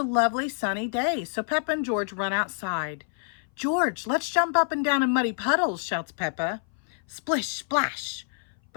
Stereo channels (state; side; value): silent; right; 58 dB below the other